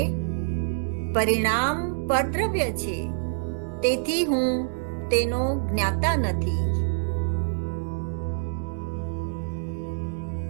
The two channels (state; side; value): silent; left; 61 dB below the other